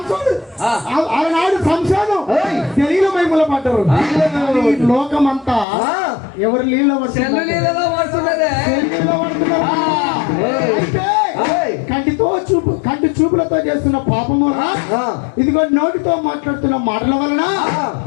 సంసారం తెలియని మైముల పడ్డారు. లోకమంతా ఎవరు నీళ్ళ పడుతున్నారు. కంటి చూపులతో చేస్తున్న పాపము వలన, ఆ. ఇదిగో నోటితో మాట్లాడుతున్న మాటల వలన,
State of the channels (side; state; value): right; drops out; at 5.7 s